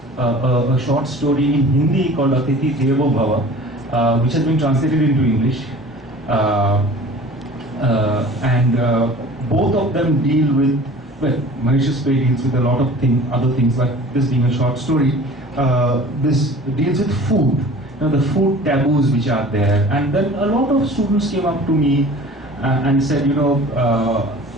a short story in Hindi called Atithi Devo Bhava, which has been translated into English. Both of them deal with, well, Mahesh's play deals with a lot of other things, like this being a short story. This deals with food, the food taboos which are there. And then a lot of students came up to me and said,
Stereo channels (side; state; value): both; normal; correlation 0.44